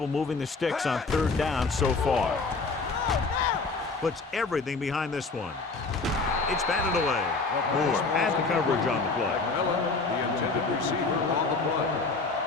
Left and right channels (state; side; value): quieter; right; 3.9 dB